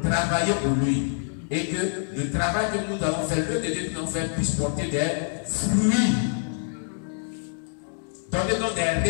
Travailler pour lui. Et que le travail que nous allons faire, le Dieu que nous allons faire, puisse porter des fruits. Donnez-nous des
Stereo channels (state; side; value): silent; right; digital silence